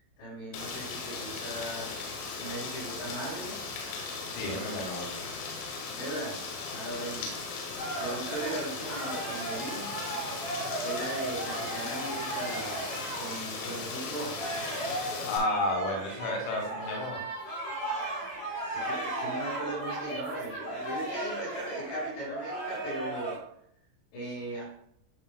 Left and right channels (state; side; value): late; right; 31 ms